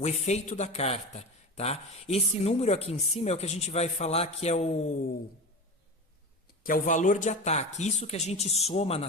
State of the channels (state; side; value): normal; both; correlation 0.26